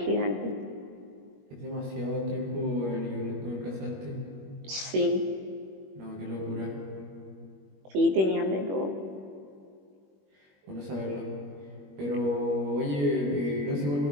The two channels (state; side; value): late; left; 21 ms